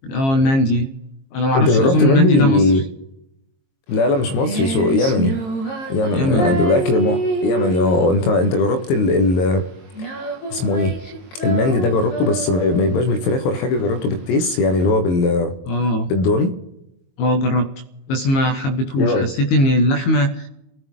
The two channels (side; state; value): right; late; 22 ms